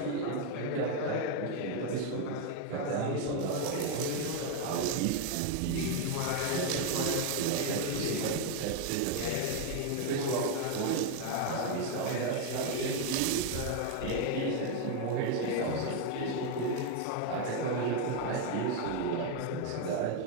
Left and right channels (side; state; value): both; different; correlation 0.01